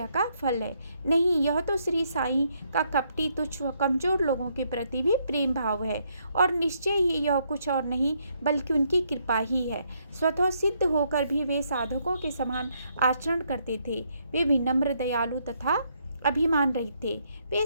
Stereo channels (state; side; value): inverted; both; correlation -0.74